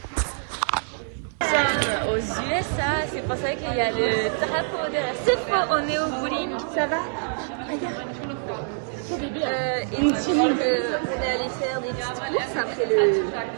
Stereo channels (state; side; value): silent; left; 62 dB below the other